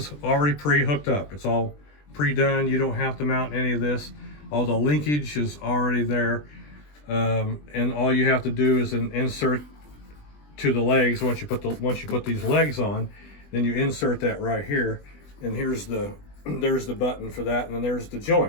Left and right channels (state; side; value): late; right; 20 ms